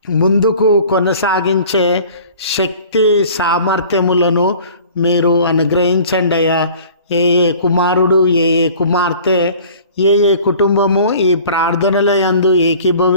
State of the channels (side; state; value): both; inverted; correlation -0.47